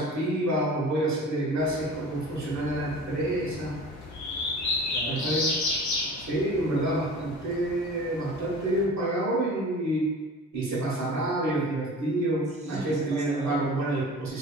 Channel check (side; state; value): both; normal; correlation 0.39